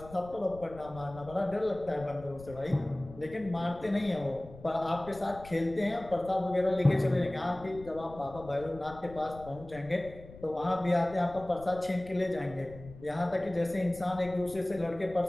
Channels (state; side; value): noise; left; rumble, 17 dB below the sound